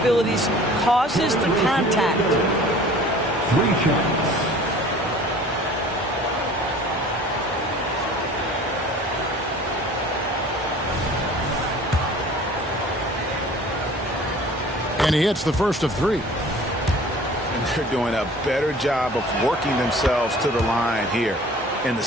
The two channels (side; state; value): both; normal; correlation 0.46